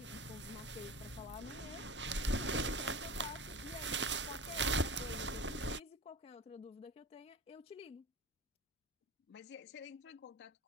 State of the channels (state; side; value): normal; both; correlation 0.32